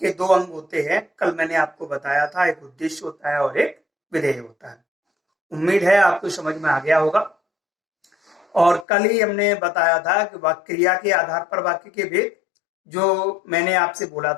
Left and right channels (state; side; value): drops out; right; at 8.8 s